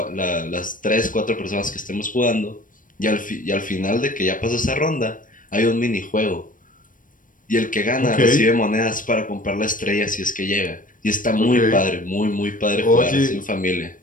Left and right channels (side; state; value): right; late; 0.39 ms